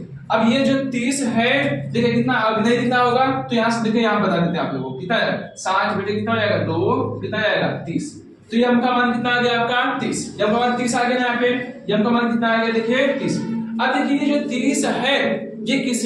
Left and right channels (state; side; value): identical; both; correlation 1.00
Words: अब ये जो 30 है देखिए कितना अब नहीं दिखना होगा, तो यहाँ से देखिए यहाँ बता देते हैं आप लोगों को कितना है 60 बटे कितना हो जाएगा 2 कितना आएगा 30। तो m का मान कितना आ गया आपका 30, m का मान 30 आ गया यहाँ पे। m का मान कितना आ गया देखिए 30। अब देखिए ये जो 30 है ये किस